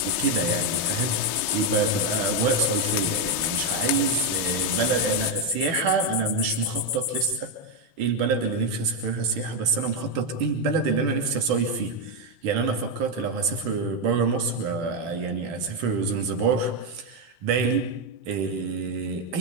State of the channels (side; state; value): left; late; 6.4 ms